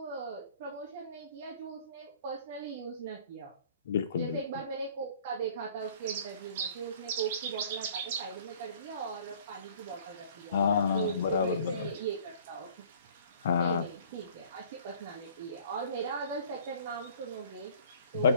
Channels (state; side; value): inverted; both; correlation -0.52